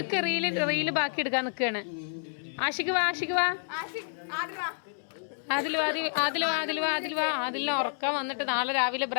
റീല് ബാക്കി എടുക്കാൻ നിക്കാണ്. ആഷിക്ക് വാ ആദിലിനെ ഉറക്കം വന്നിട്ട് നാളെ രാവിലെ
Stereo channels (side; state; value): right; silent; digital silence